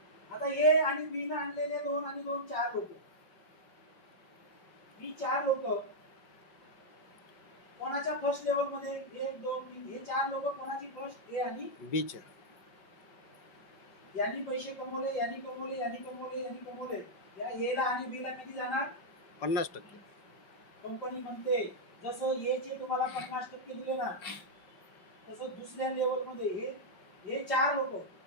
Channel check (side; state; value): right; late; 5.4 ms